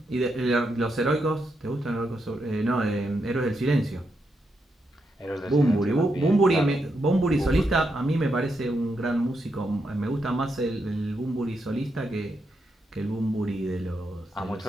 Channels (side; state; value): both; normal; correlation 0.82